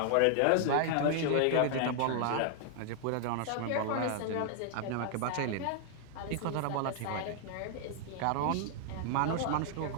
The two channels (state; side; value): different; both; correlation 0.00